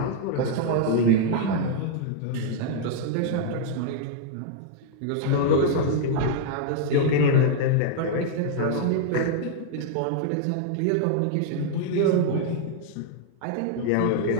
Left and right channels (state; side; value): different; both; correlation -0.01